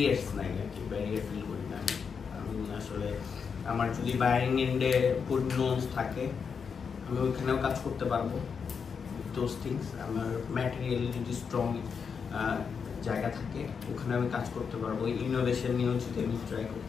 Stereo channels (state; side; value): quieter; right; 6.1 dB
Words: নাই আর কি, ব্যারিয়ার ফিল করি না আমি আসলে। আমার যদি বাইরিং এন্ডে গুড নোস থাকে, আমি ওইখানেও কাজ করতে পারবো দোজ থিংস। আমার ম্যাটেরিয়ালি যদি স্ট্রং জায়গা থাকে, ওখানে আমি কাজ করতে পারবো। ইনোভেশন নিয়েও যদি আমি ট্রাই